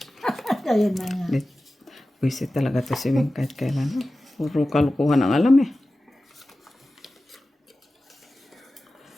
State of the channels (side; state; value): both; normal; correlation 0.95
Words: Ayun na nga. Buisit talaga to si Wing kahit kailan. Puro kalukuhan ang alam eh.